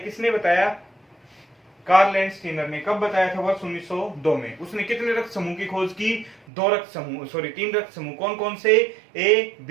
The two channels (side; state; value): left; drops out; at 6.5 s